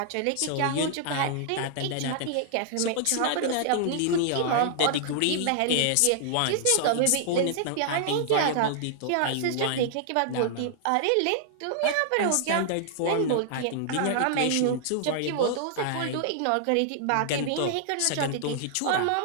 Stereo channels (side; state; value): both; different; correlation -0.01